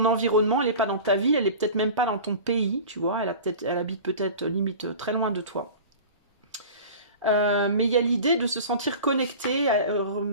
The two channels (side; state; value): both; inverted; correlation -0.37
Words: environnement, elle n'est pas dans ta ville, elle n'est peut-être même pas dans ton pays, tu vois, elle habite peut-être limite très loin de toi. Mais il y a l'idée de se sentir connecté,